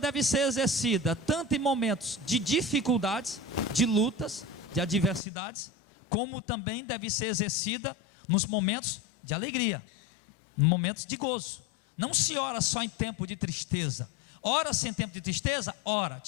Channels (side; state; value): right; drops out; at 5.2 s